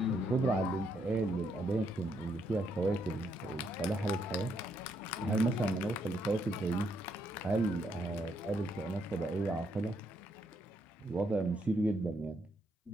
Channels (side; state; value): both; normal; correlation 0.75